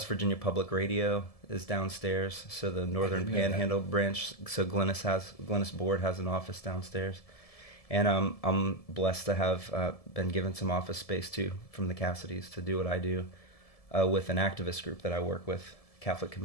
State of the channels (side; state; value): right; late; 1.7 ms